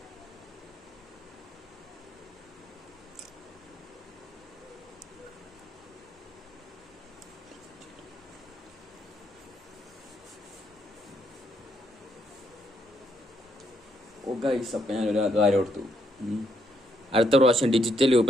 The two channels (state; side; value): normal; both; correlation 0.75